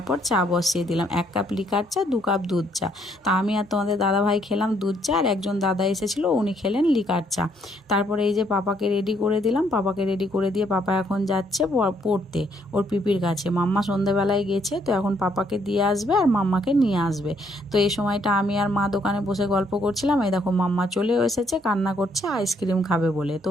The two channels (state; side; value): normal; both; correlation 0.69